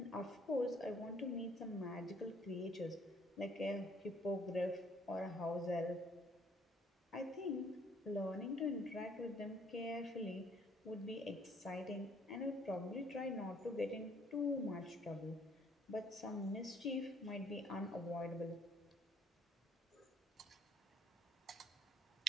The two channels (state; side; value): normal; both; correlation 0.63